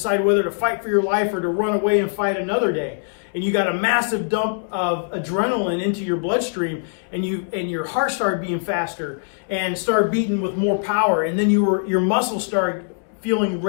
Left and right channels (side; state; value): right; silent; digital silence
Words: whether to fight for your life or to run away and fight another day. And you got a massive dump of adrenaline into your bloodstream and your heart started beating faster and started beating with more power, and then your muscles started feeling